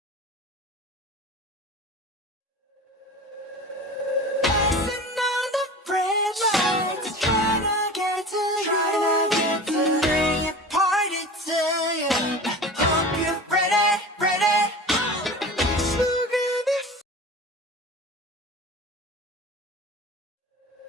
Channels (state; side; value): normal; both; correlation 0.35